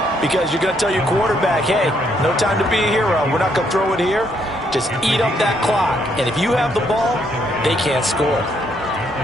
Because you're going to tell your quarterback, hey, no time to be a hero. We're not going to throw it here. Just eat up that clock. And if you have the ball, they can't score.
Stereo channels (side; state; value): both; normal; correlation 0.72